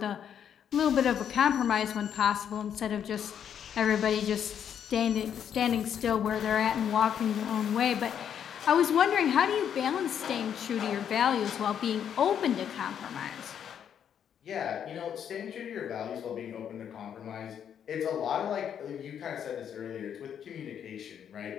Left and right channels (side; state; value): right; quieter; 8.7 dB